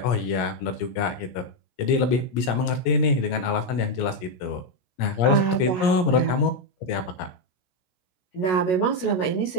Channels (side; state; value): right; late; 17 ms